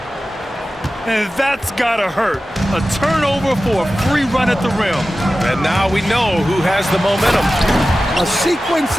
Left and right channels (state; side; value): normal; both; correlation 0.95